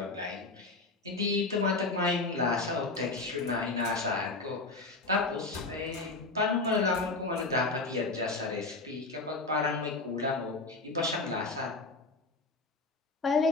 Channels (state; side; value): quieter; right; 3.5 dB